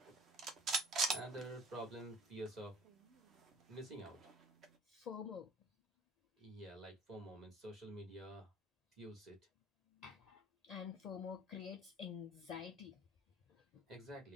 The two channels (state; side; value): normal; both; correlation 0.50